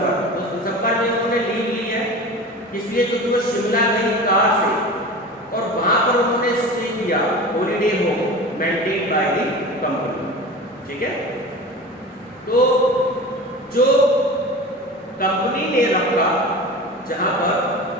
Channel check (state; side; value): normal; both; correlation 0.33